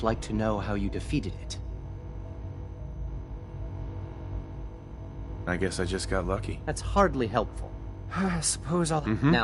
like to know how you defeated it. I guess I just got lucky. That's hardly helpful. I suppose I'll...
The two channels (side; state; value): both; identical; correlation 1.00